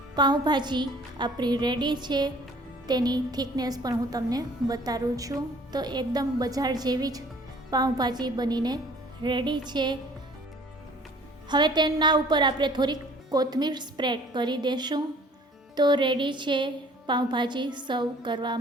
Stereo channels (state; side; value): normal; both; correlation 0.53